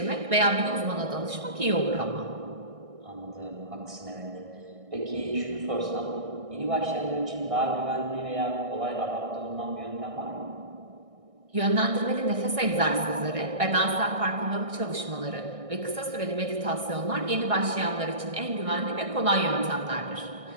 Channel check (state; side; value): late; left; 1.6 ms